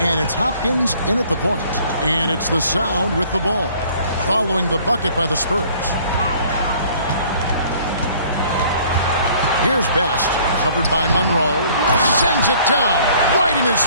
And it's Hopkins in at the point. And it's the Sound with the ball, following the bucket by the Spurs. Here's Best, covered by Monroe. Sends it down, right in his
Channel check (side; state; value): both; inverted; correlation -0.56